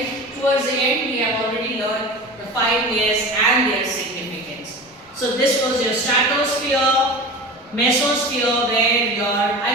towards the end, we have already learned the 5 layers and their significance. So this was your stratosphere, mesosphere, where I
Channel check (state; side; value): normal; both; correlation 0.33